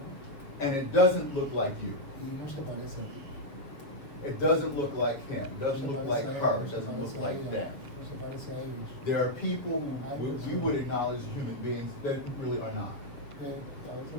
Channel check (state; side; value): late; right; 7.0 ms